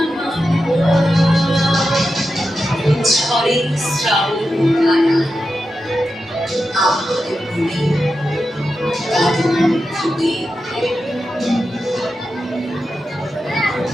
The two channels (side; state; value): both; normal; correlation 0.90